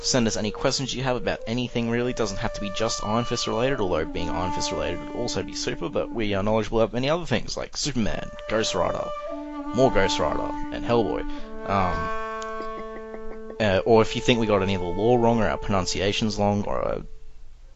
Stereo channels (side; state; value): both; identical; correlation 1.00